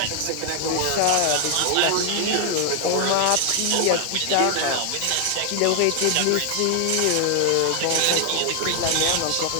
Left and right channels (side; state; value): both; different; correlation 0.00